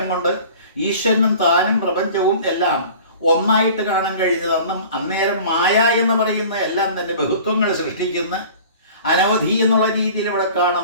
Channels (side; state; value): both; inverted; correlation -0.44